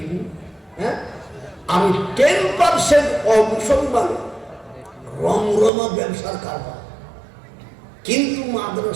হ্যাঁ, আমি 10% অমুসলমান, রমরমা ব্যবসার কারবার। কিন্তু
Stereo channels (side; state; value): left; drops out; at 5.7 s